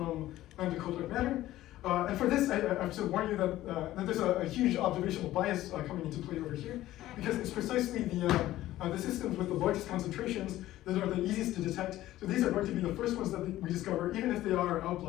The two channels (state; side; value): quieter; right; 15.0 dB